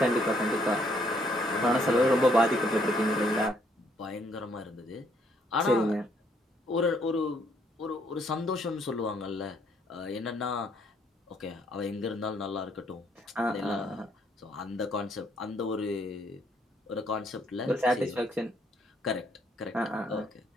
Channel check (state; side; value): normal; both; correlation 0.69